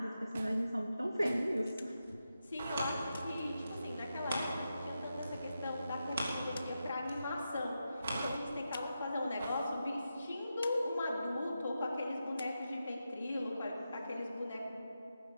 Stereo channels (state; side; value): inverted; both; correlation -0.88